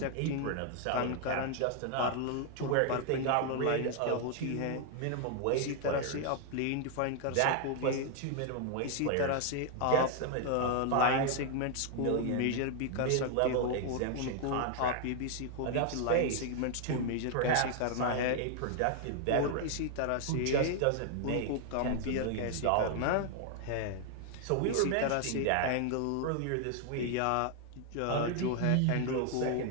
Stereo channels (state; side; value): different; both; correlation 0.00